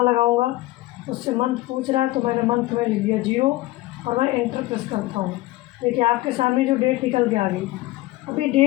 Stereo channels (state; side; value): quieter; right; 18.5 dB